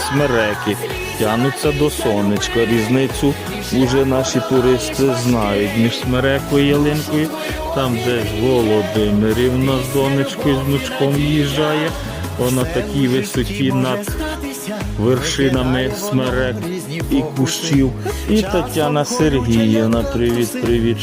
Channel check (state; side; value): identical; both; correlation 1.00